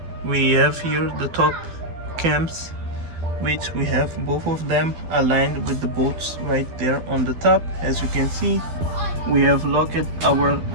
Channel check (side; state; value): left; late; 12 ms